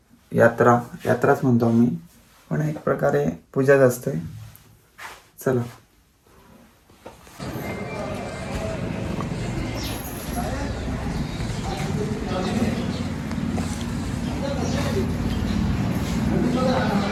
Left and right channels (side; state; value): both; identical; correlation 1.00